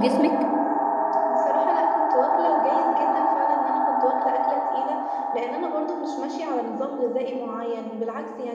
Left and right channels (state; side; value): identical; both; correlation 1.00